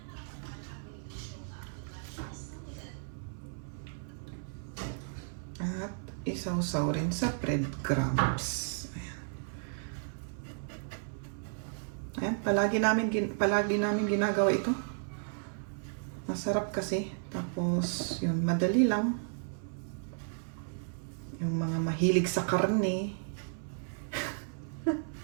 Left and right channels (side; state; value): left; silent; 55 dB below the other